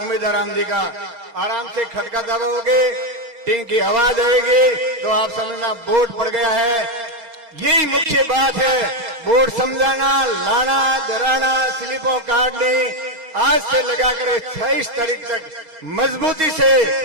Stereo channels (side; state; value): left; late; 4.3 ms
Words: राम जी का। आराम से खटका दबाओगे, टिंग की आवाज आएगी तो आप समझना वोट पड़ गया है। यही मुख्य बात है, वोट समझाना, लाना, डराना, स्लिपों काटनी। आज से लगाकर 26 तारीख तक मजबूती से